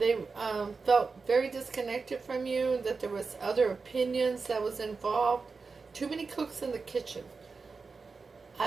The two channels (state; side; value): quieter; left; 4.5 dB